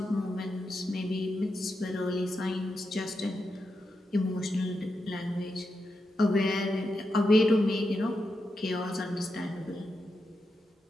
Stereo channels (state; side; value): normal; both; correlation 0.87